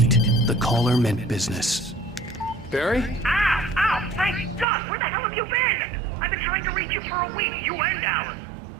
The caller meant business. Barry? Ow! Ow! Thank God! Where the hell have you been? I've been trying to reach you for a week, you and Alice.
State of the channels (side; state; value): left; drops out; at 4.7 s